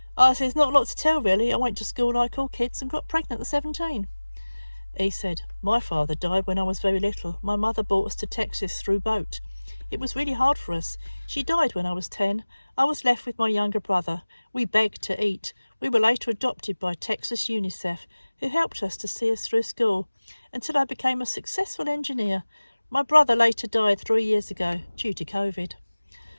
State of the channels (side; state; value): both; inverted; correlation -1.00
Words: I said, there's not a lot to tell really. I went to school like all kids and got pregnant at 17. He said, my father died when I was very little. My mother brought us to Texas through boat. It was really hard for us. She died when I was 10. I was left with my younger brother. We begged to eat. We were later adopted by Texas UNICEF, who helped us to see us through school until I became a successful engineer. My brother later died 3 years ago due to COVID.